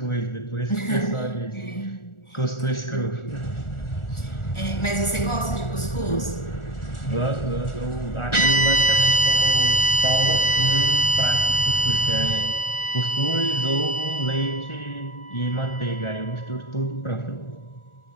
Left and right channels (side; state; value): right; late; 1.4 ms